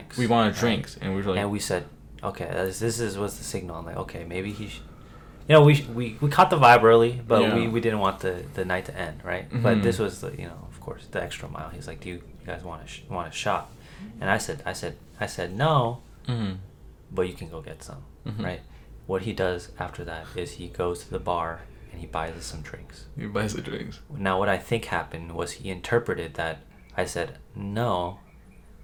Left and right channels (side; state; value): both; identical; correlation 1.00